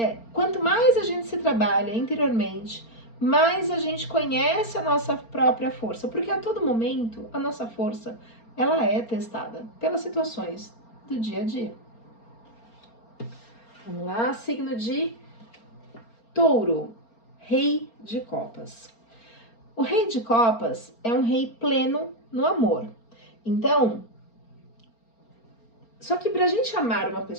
quanto mais a gente se trabalha interiormente, mais a gente conhece a nossa própria força, porque a todo momento a nossa força ela é testada pelas situações do dia a dia. Vamos lá, signo de Touro, Rei de Copas. O Rei de Copas é um rei pleno no amor. Então, só que para a gente amar uma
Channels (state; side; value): late; right; 4.3 ms